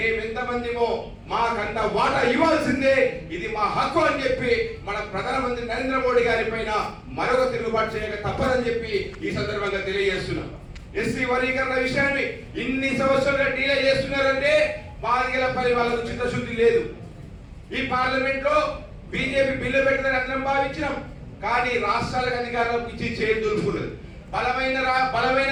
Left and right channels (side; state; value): both; identical; correlation 1.00